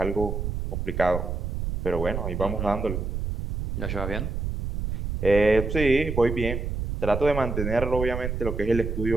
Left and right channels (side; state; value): right; noise; rumble, 3 dB below the sound